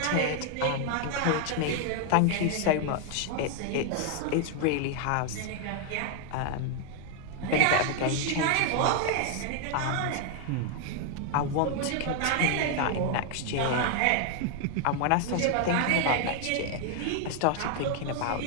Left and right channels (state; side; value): different; both; correlation 0.00